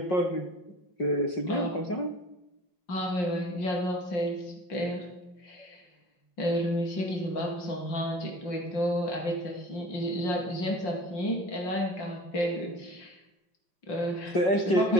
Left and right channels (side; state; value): right; late; 5.4 ms